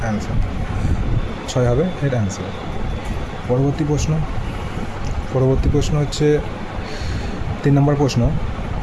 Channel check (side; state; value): both; identical; correlation 1.00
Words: অ্যান্সার। 6 হবে এর অ্যান্সার। পরবর্তী প্রশ্ন হচ্ছে 3 নম্বর প্রশ্ন।